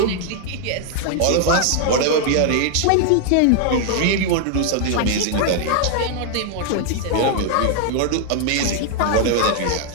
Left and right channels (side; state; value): both; different; correlation 0.00